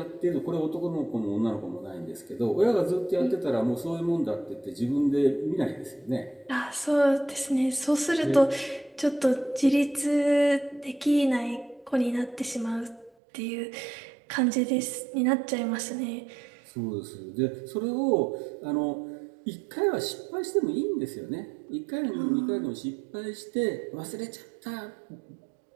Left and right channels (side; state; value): left; drops out; at 13.1 s